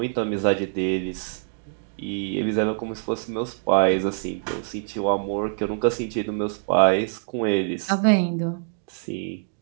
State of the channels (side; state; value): left; silent; digital silence